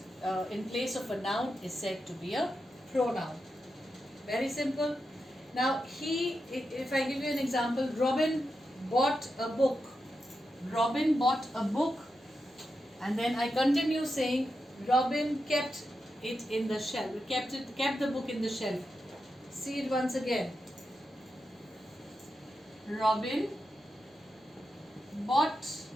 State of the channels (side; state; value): both; normal; correlation 0.88